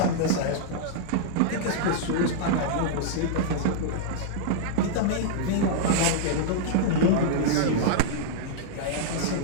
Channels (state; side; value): different; both; correlation -0.01